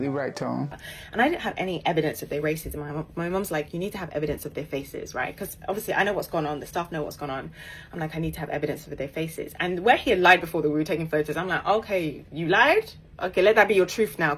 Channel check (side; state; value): both; identical; correlation 1.00